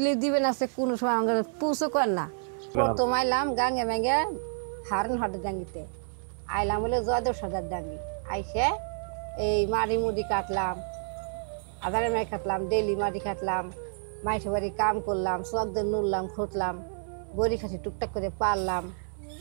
দিবেন আছে, কোনো সময় আমাকে পুষো কর না। প্রথম আইলাম গাঙ্গে ম্যাঙ্গে হারন হাটের ডাঙ্গিতে আইলাম, বলে জয়দেব সর্দার ডাঙ্গি। আইসে এই মাড়ি মুড়ি কাটলাম, আধারে মাই কাটলাম, ডেলি মাটি কাটলাম, মাইসে বাড়ি কাম করলাম, চকদের নুরলাম, খুঁটলাম, বড়ি খাসি টুকটাক করে পারলাম।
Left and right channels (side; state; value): left; silent; 59 dB below the other